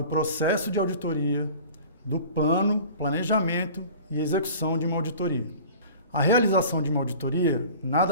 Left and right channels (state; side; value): inverted; both; correlation -0.42